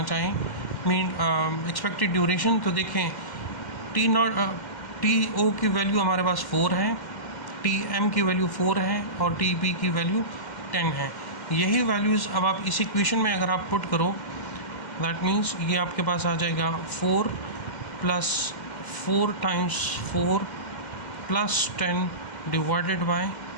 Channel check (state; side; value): late; right; 2.1 ms